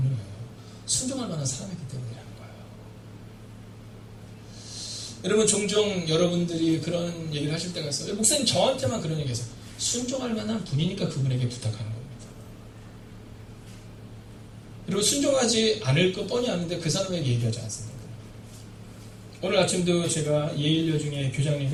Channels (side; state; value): both; identical; correlation 1.00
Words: 순종할 만한 사람이기 때문이라는 거예요. 여러분 종종 여러분들이 그런 얘기를 하실 때가 있어요. 목사님 저한테만 그런 얘기해서 순종할 만한 분이니까 그분에게 부탁하는 겁니다. 그리고 순종하지 않을 거 뻔히 아는데 그 사람에게 얘기하지 않습니다. 오늘 아침도 제가 예일여 중에